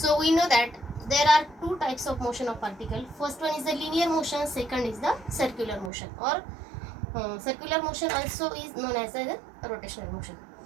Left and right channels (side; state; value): left; drops out; at 5.9 s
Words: we know that there are two types of motion of particle. First one is the linear motion, second is the circular motion, or circular motion also is known as the rotational motion.